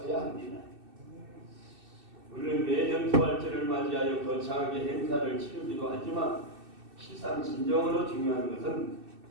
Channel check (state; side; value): late; left; 2.6 ms